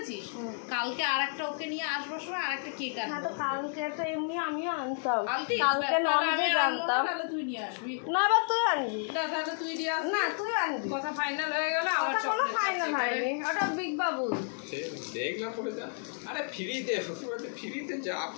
কালকে আর একটা ওকে নিয়ে আসবার সময় আর একটা কেক আনবো। তো কালকে তো এমনি আমিও আনতাম, কালকে ননভেজ আনতাম। তাহলে তুই নিয়ে আসবি না বা তুই আনবি না, তাহলে তুই নিয়ে আসবি না, তুই আনবি। কথা ফাইনাল হয়ে গেল। আমার কোনো ফাইনাল হয়নি, ওটা বিগ বাবু দেখলাম পড়ে যা। আরে ফ্রিতে শ্বশুরবাড়িতে ফ্রিতে যা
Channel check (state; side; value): silent; right; 57 dB below the other